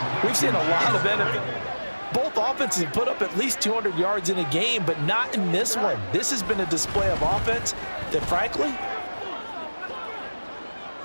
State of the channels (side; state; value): both; inverted; correlation -1.00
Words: we've seen a lot of benefit. Both offenses have put up at least 200 yards in a game, but not in this one. This has been a display of offense that, frankly,